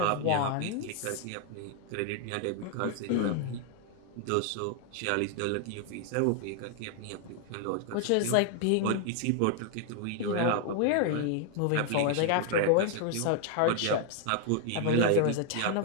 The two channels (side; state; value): both; different; correlation 0.00